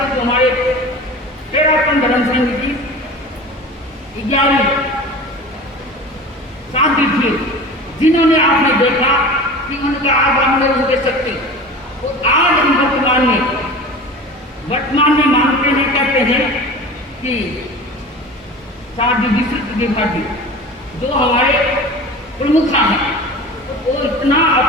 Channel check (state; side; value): normal; both; correlation 0.36